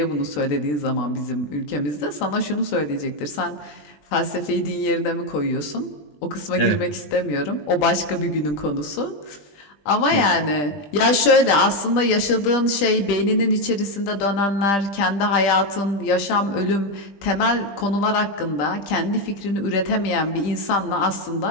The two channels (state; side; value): late; right; 20 ms